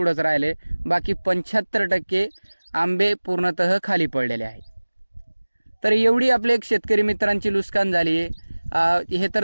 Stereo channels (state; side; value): inverted; both; correlation -1.00